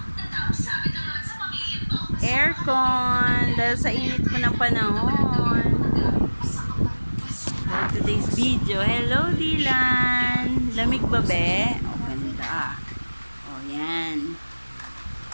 aircon dahil sa init po ng panahon. For today's video, hello Dylan! Lamig ba be? O, ganda. O, yan.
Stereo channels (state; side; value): inverted; both; correlation -1.00